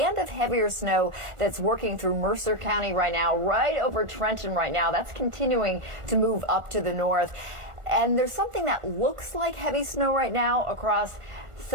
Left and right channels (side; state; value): left; late; 1.4 ms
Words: of heavier snow that's working through Mercer County right now, right over Trenton right now. That's continuing to move up to the north. And there's something that looks like heavy snow right now across